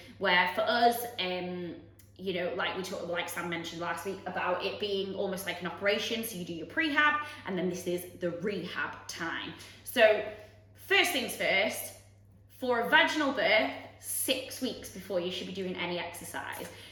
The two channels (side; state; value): both; identical; correlation 1.00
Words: where for us, like we talked, like Sam mentioned last week, about it being almost like an operation. So you do your prehab, and then this is the rehab time. So first things first, for a vaginal birth, 6 weeks before you should be doing any exercise.